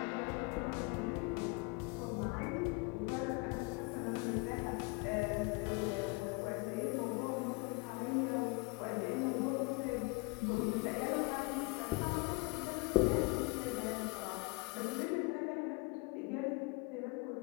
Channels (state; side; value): quieter; right; 28.2 dB